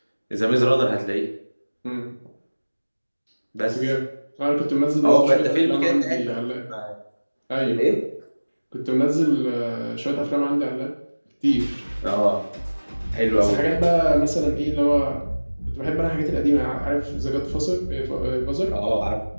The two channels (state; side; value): inverted; both; correlation -1.00